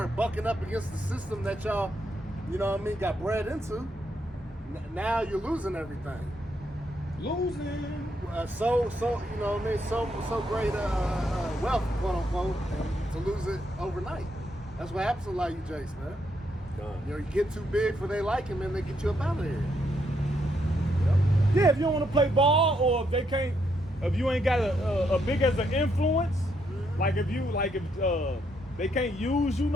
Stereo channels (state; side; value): normal; both; correlation 0.76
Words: bucking up against the system that y'all, you know what I mean, got bred into. Now you're losing everything. Losing. So you know what I mean, so great wealth, quote unquote, and to lose it overnight. That's what happens to a lot of you jakes, man. You know, you get too big for they liking, and they get you up out of here. Yeah, if you don't want to play ball, or if they can't, if you ain't got a big as an influence, like if they can't use you